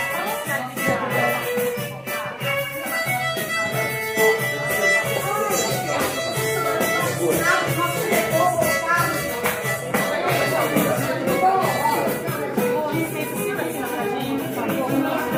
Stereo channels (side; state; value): both; identical; correlation 1.00